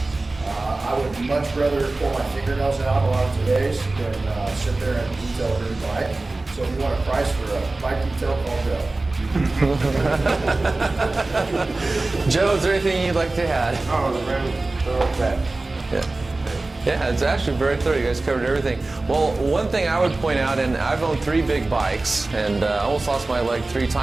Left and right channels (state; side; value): quieter; left; 3.2 dB